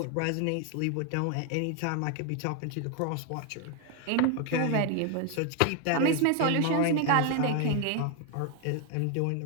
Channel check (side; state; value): both; different; correlation 0.01